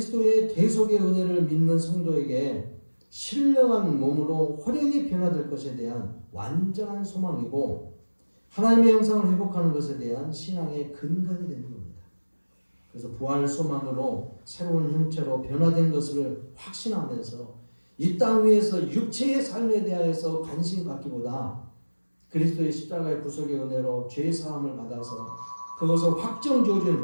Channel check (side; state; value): both; inverted; correlation -1.00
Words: 대속의 은혜를 믿는 성도에게 신령한 몸으로 호련히 변화될 것에 대한 완전한 소망이고 하나님의 형상을 회복하는 것에 대한 신앙의 근간이 되는 겁니다. 그래서 부활 소망으로 새로운 형체로 변화된 것을 확신하면서 이 땅 위에서 육체의 삶에 대하여서 관심 갖기보다 그리스도의 십자가의 구속의 은혜로 죄 사함을 받아서 그것을 확정